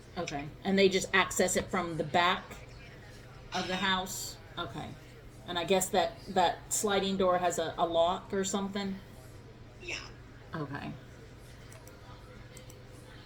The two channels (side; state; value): both; identical; correlation 1.00